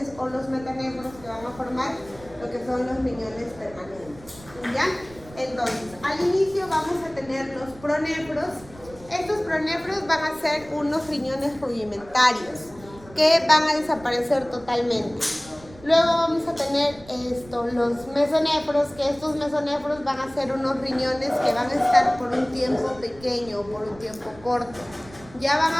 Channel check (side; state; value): right; noise; rumble, 21 dB below the sound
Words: o los metanefros que van a formar lo que son los riñones permanentes. ¿Ya? Entonces, al inicio vamos a tener los pronefros. Estos pronefros van a ser unos riñones rudimentarios que van a desaparecer totalmente. Luego vamos a tener los mesonefros, que estos mesonefros van a ser unos riñones que van a estar por un tiempo pequeño o por un tiempo corto. Ya van